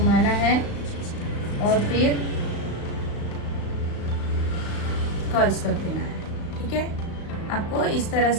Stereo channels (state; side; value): late; right; 35 ms